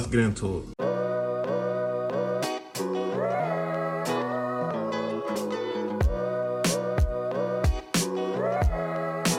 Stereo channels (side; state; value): both; identical; correlation 1.00